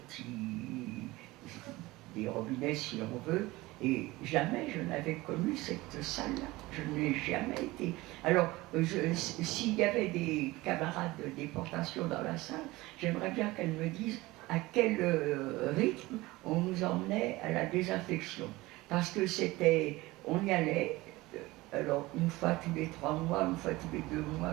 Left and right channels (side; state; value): left; quieter; 20.0 dB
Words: des robinets si on veut, Et jamais je n'avais connu cette salle-là. Je n'ai jamais été. Alors, s'il y avait des camarades de déportation dans la salle, j'aimerais bien qu'elles me disent à quel rythme on nous emmenait à la désinfection. Parce que c'était, on y allait, alors une fois tous les 3 mois, une fois tous les 2